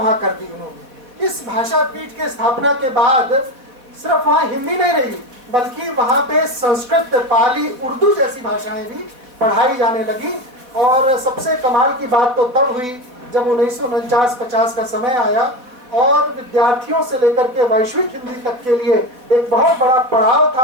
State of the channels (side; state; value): left; late; 4.0 ms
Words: कर दी उन्होंने। इस भाषा पीठ के स्थापना के बाद सिर्फ वहां हिंदी नहीं रही, बल्कि वहां पे संस्कृत, पाली, उर्दू जैसी भाषाएं भी पढ़ाई जाने लगी। और सबसे कमाल की बात तो तब हुई जब 1949-50 का समय आया और विद्यार्थियों से लेकर के वैश्विक हिंदी तक के लिए एक बहुत बड़ा पड़ाव